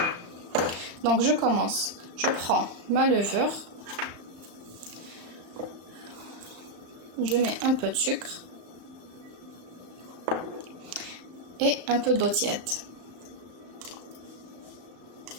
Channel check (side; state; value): left; late; 35 ms